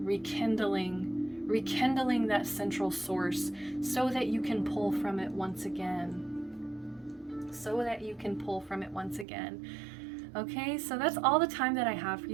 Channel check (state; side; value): drops out; left; at 9.2 s